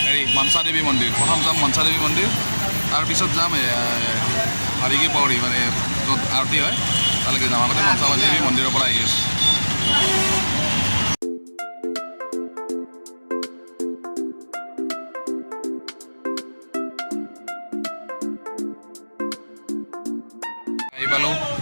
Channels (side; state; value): both; inverted; correlation -1.00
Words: মনসা দেৱী মন্দিৰ। প্ৰথম যাম মনসা দেৱী মন্দিৰ, তাৰপিছত যাম হাৰিকি পৌৰী, মানে য'ত আৰতি হয় তালৈকে যাম। আগতে মনসা দেৱী মন্দিৰৰ পৰা আহি আছোঁ। আহি পালোঁ